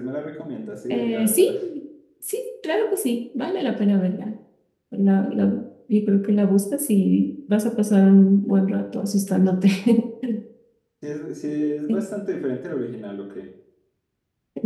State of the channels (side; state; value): both; identical; correlation 1.00